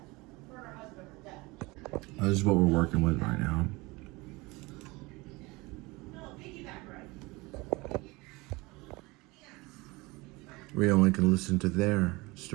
This is what we're working with right now. We only can listen to their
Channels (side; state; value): left; quieter; 23.6 dB